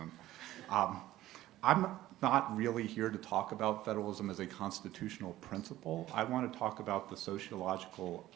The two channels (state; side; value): quieter; left; 15.0 dB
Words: I'm not really here to talk about federalism as a constitutional principle. I want to talk about the sociological